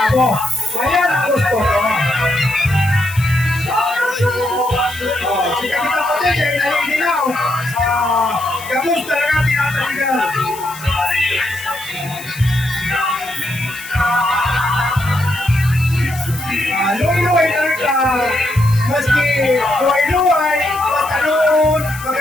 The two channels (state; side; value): noise; left; hiss, 15 dB below the sound